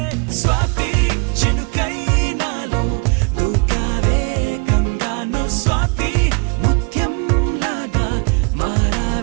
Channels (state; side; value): quieter; left; 33.1 dB